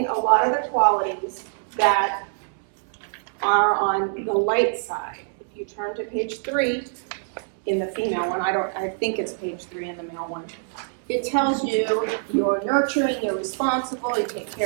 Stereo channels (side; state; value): left; silent; 62 dB below the other